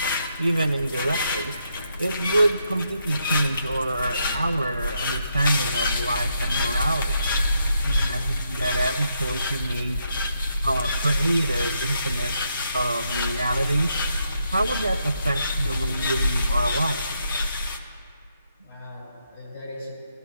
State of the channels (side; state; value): both; inverted; correlation -0.78